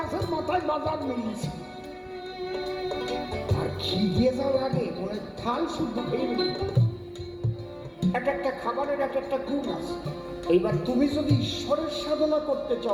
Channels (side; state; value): both; identical; correlation 1.00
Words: মাথায় বাজার মিলিয়েছে, আর খিদে যাওয়ার আগে মনে থাল শুদ্ধ খেয়ে নিল। একটা খাবারের একটা গুণ আছে। এইবার তুমি যদি ঈশ্বরের সাধনা করতে